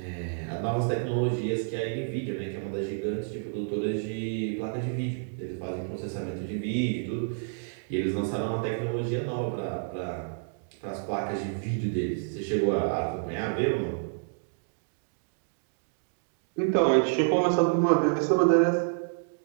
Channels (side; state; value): left; silent; digital silence